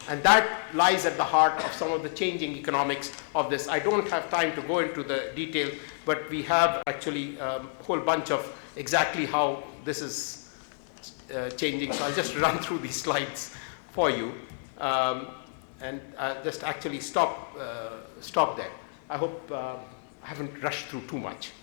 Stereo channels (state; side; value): silent; right; digital silence